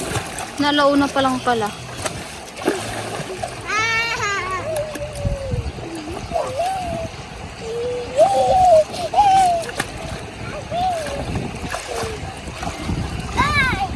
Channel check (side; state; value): both; identical; correlation 1.00